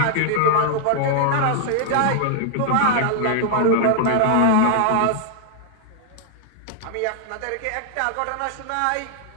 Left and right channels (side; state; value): both; different; correlation -0.01